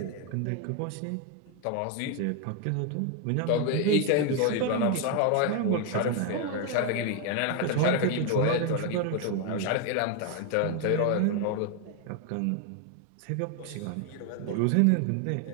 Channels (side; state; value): both; different; correlation 0.01